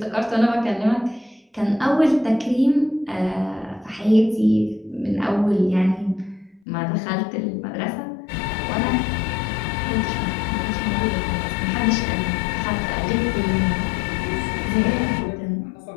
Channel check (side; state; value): right; drops out; at 6.6 s